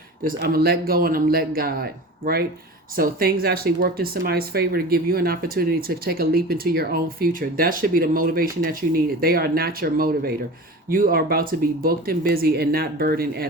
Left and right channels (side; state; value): both; normal; correlation 0.34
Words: Just, I'm going to let go and I'm let God, right? So things actually worked in somebody's favor to give you an opportunity to take a leap into your own future. That should be the motivation that you needed. They are not your motivator. You are about to be booked and busy and not burdened